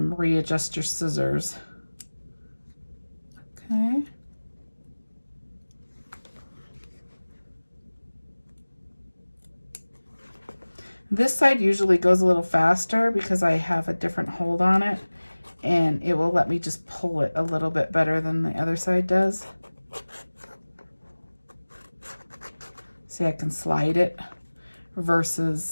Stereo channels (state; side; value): inverted; both; correlation -1.00